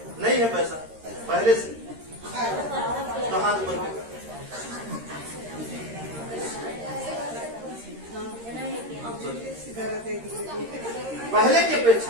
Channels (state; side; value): late; left; 13 ms